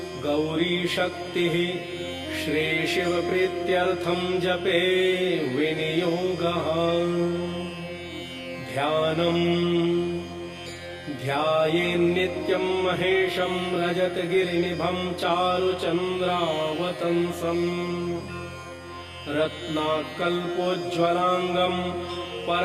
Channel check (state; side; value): identical; both; correlation 1.00